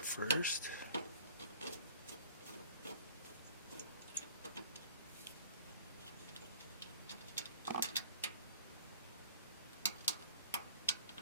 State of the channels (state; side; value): inverted; both; correlation -0.48